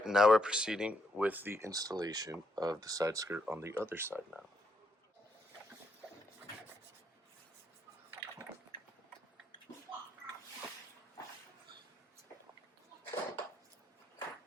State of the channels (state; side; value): normal; both; correlation 0.75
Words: now we're proceeding with the installation of the side skirt on the other side now.